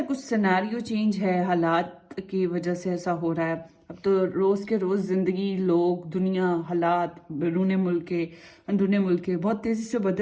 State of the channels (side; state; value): both; identical; correlation 1.00